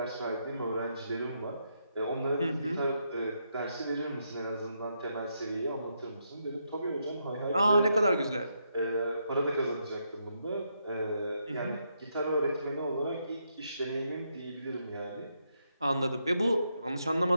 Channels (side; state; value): both; inverted; correlation -0.80